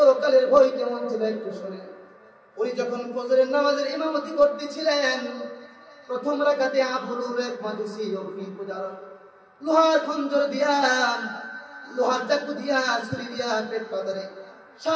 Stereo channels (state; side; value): identical; both; correlation 1.00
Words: ভয় কেমন ছিল একটু শুনে। উনি যখন ফজরের নামাজের ইমামতি করতেছিলেন, প্রথম রাকাতে আবুল এক মাজুসি অগ্নি পূজার লোহার খঞ্জর দিয়া, লোহার চাকু দিয়া, ছুরি দিয়া পেট পাতারে